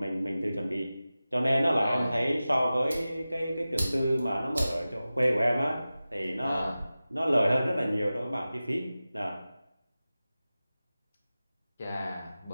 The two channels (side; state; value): both; inverted; correlation -0.95